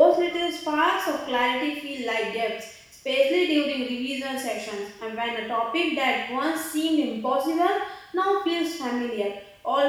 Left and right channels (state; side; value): identical; both; correlation 1.00